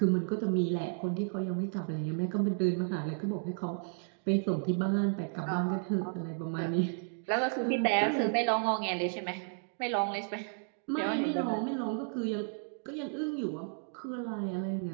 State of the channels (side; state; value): left; silent; 56 dB below the other